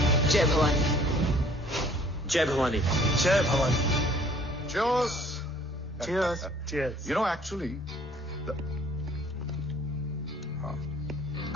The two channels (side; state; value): both; normal; correlation 0.56